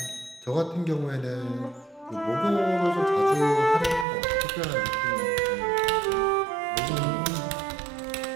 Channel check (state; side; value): drops out; left; at 4.0 s